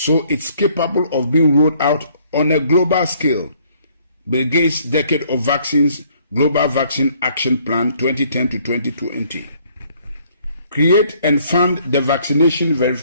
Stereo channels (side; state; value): both; inverted; correlation -0.63